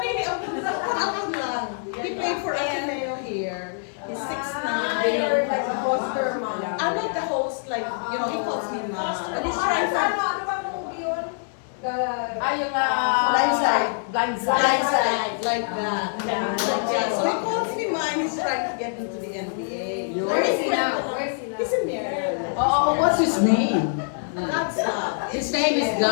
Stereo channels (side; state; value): right; silent; 62 dB below the other